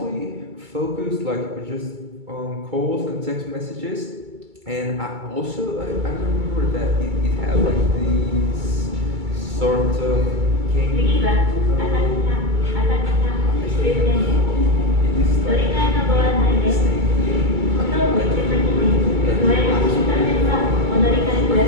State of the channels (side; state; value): left; late; 2.3 ms